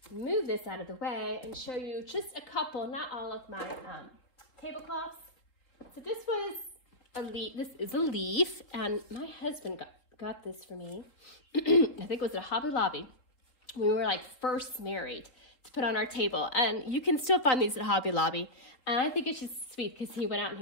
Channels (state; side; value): late; right; 3.9 ms